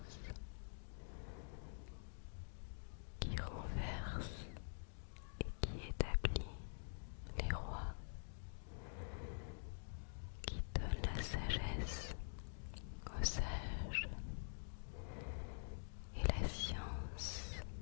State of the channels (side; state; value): right; silent; digital silence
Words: qui renverse et qui établit les rois, qui donne la sagesse aux sages et la science